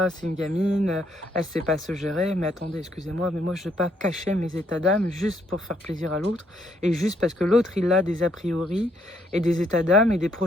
c'est une gamine, elle sait pas se gérer. » Mais attendez, excusez-moi, mais moi je ne vais pas cacher mes états d'âme juste pour faire plaisir à l'autre et juste parce que l'autre il a des a priori et des états d'âme et des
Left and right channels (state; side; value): normal; both; correlation 0.71